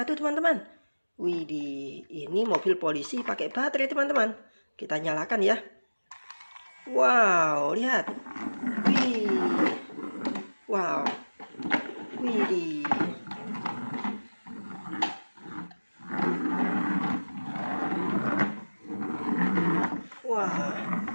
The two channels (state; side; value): inverted; both; correlation -1.00